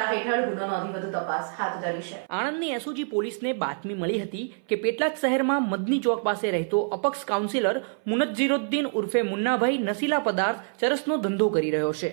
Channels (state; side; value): silent; left; 61 dB below the other